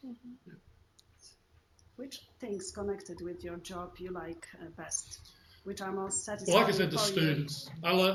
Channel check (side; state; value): both; identical; correlation 1.00